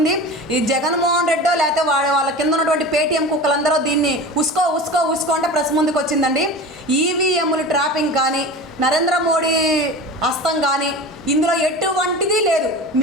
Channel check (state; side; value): normal; both; correlation 0.33